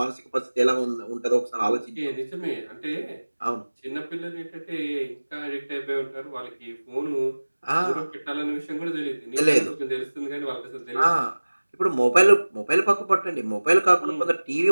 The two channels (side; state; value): both; inverted; correlation -1.00